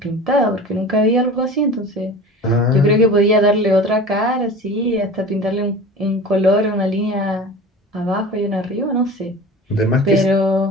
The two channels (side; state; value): both; normal; correlation 0.36